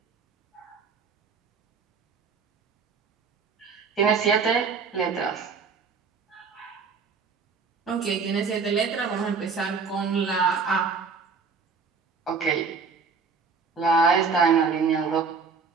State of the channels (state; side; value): quieter; left; 5.2 dB